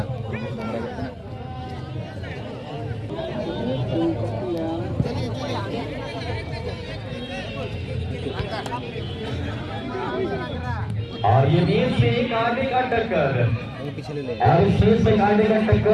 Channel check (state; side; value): identical; both; correlation 1.00